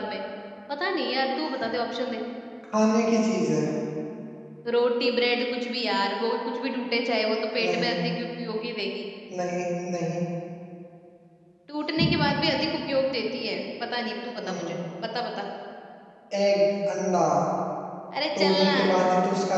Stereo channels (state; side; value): identical; both; correlation 1.00